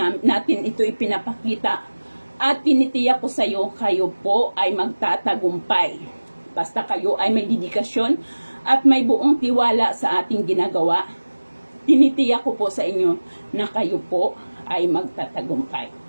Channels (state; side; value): inverted; both; correlation -1.00